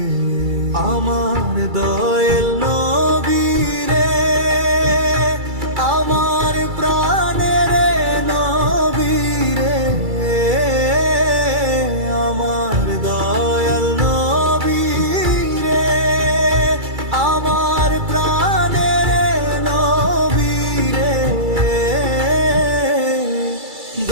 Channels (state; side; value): late; left; 2.3 ms